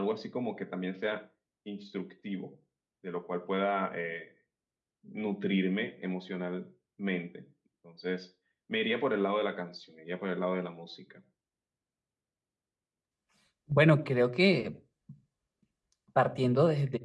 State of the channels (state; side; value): identical; both; correlation 1.00